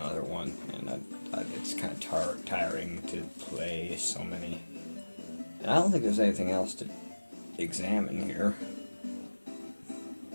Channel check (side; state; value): both; inverted; correlation -1.00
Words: one, and it's kind of tiring to play so many. And I don't think there's anything else to examine here.